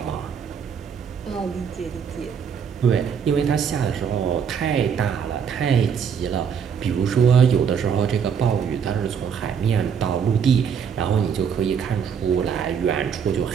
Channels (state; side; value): quieter; left; 7.2 dB